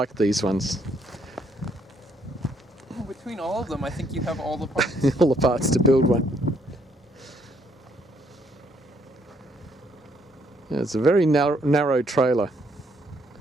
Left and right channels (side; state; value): both; normal; correlation 0.69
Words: these ones. Between all of them, I think you have all the parts. All the parts to build one. Yeah, it's a very narrow trailer.